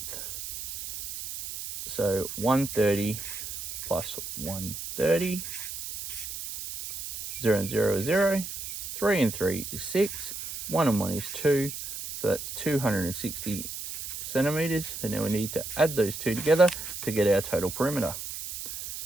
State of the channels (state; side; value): noise; right; hiss, 8 dB below the sound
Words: So 130 plus 130. 0 and 0 is 0. 3 and 3 is 6. 1 and 1 is 2. So that's 260 centimetres. And now we need to add those two together to get our total perimeter.